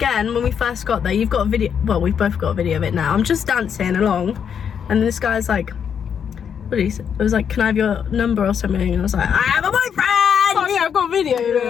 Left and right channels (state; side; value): quieter; right; 7.7 dB